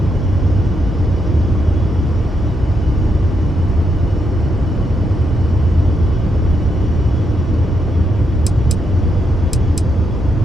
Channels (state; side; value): normal; both; correlation 0.80